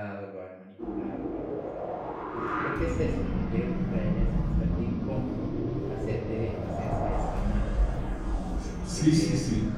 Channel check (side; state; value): both; identical; correlation 1.00